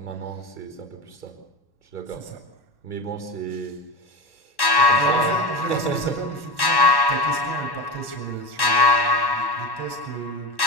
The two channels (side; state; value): right; late; 1.1 ms